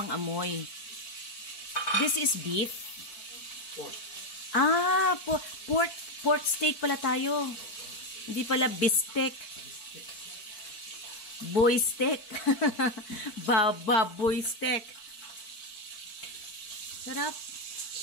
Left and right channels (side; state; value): right; late; 4.5 ms